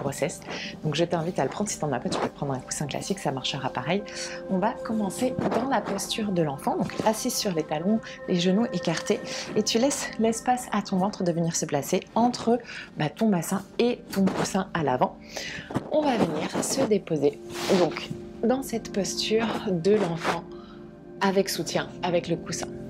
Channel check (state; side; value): identical; both; correlation 1.00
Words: Donc je t'invite à le prendre. Si tu n'en as pas, tu peux prendre un coussin classique, ça marchera pareil. On va commencer dans la posture de l'enfant, donc assis sur les talons, les genoux écartés, et tu laisses l'espace à ton ventre de venir se placer entre ton bassin et ton coussin à l'avant. On va venir se déposer donc dans cette posture de l'enfant avec soutien, avec le coussin.